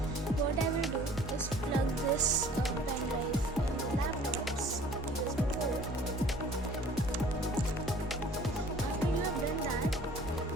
what I will do is plug this pendrive in the laptop's USB port. After you have done that,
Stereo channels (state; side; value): normal; both; correlation 0.50